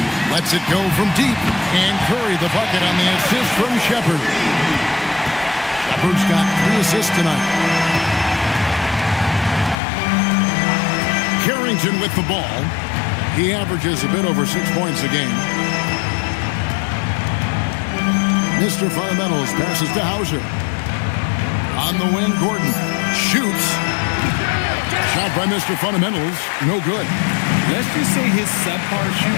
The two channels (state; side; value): drops out; right; at 9.8 s